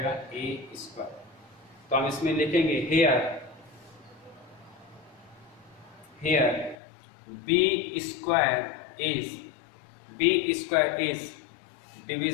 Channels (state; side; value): drops out; right; at 6.8 s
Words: a स्क्वायर। तो हम इसमें लिखेंगे here b square is